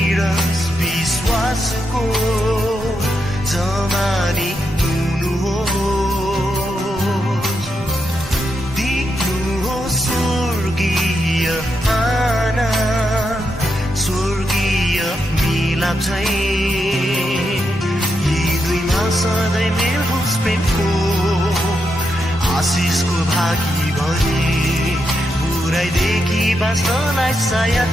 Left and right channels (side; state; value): both; normal; correlation 0.83